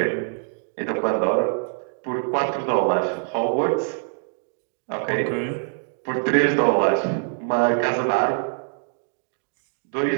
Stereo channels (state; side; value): silent; left; digital silence